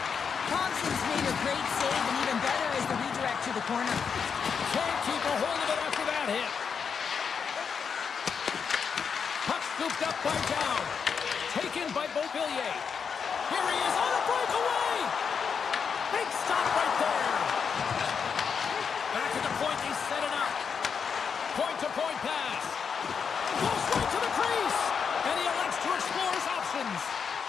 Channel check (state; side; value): quieter; right; 6.4 dB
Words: Thompson's made a great save, and even better is the redirect to the corner. Can't keep a hold of it after that hit. Puck scooped up by Down. Taken by Beauvillier. Here he is on a breakaway. Big stop right there. Back at the point, they set it up. Point-to-point pass. Goes right to the crease. And he elects to explore his options.